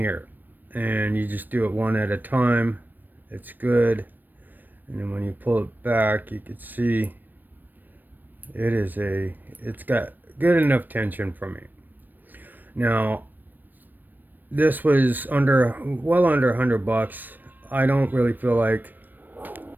and you just do it one at a time. It's good. And then when you pull it back, you can see it's got good enough tension for me. Now this was well under $100. I don't really feel like,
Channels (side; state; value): left; late; 0.090 ms